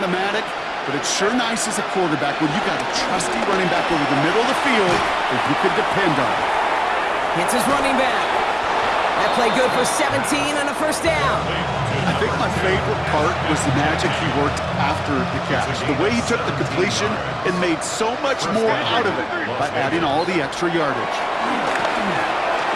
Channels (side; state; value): both; identical; correlation 1.00